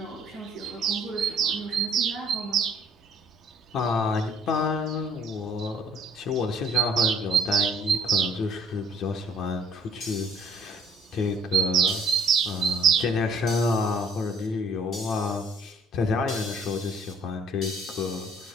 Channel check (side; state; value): both; normal; correlation 0.57